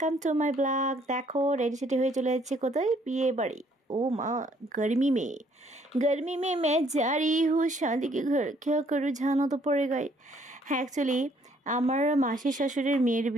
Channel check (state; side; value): normal; both; correlation 0.65